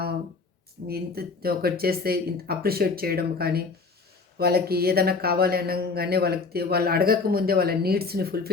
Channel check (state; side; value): quieter; right; 4.3 dB